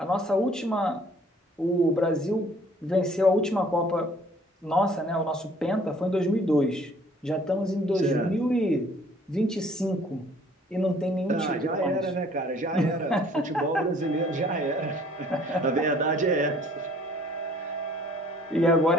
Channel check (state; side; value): normal; both; correlation 0.57